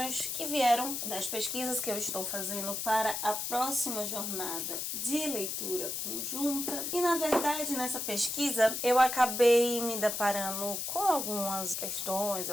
que vieram das pesquisas que eu estou fazendo para a próxima jornada de leitura conjunta. E, na verdade, nessa pesquisa, eu acabei me deparando com algumas questões,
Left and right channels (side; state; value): left; noise; hiss, 3 dB below the sound